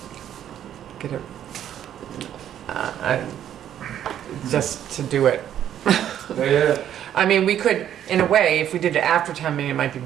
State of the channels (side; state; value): left; quieter; 10.5 dB